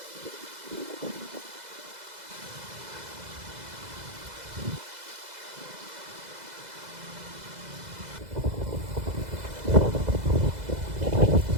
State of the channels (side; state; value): left; late; 2.0 ms